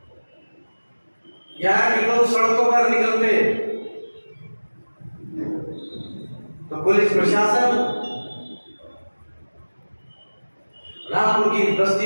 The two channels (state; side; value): inverted; both; correlation -1.00